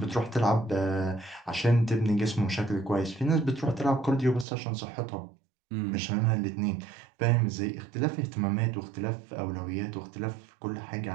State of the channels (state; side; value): drops out; left; at 4.5 s